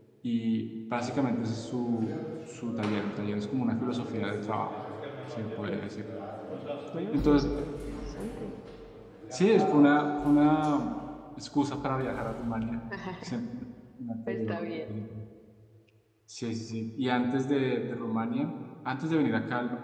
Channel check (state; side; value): identical; both; correlation 1.00